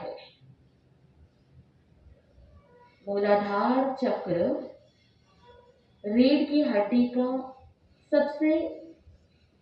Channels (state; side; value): identical; both; correlation 1.00